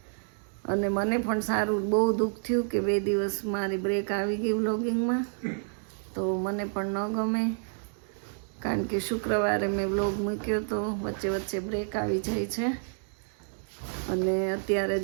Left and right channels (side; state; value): left; silent; digital silence